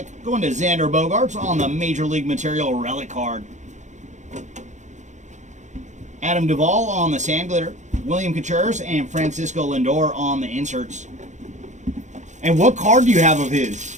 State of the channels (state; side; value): late; left; 0.35 ms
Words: going to Xander Bogaerts on the Major League Material relic card. Adam Duvall on the sand glitter. William Contreras and Francisco Lindor on the inserts. And what card do you have of his?